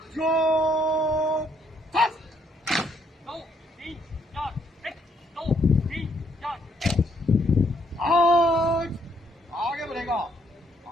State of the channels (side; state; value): both; normal; correlation 0.70